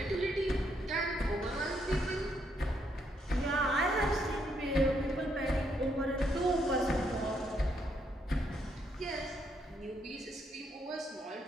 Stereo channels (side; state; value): both; normal; correlation 0.75